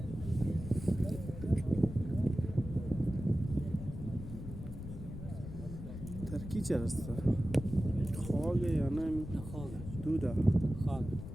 ترکی چه هست؟ خاگه یا نه؟ خاگه دوده خاگه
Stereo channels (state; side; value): noise; left; rumble, 9 dB below the sound